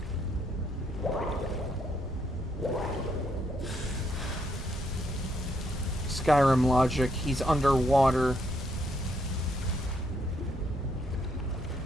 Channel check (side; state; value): both; normal; correlation 0.74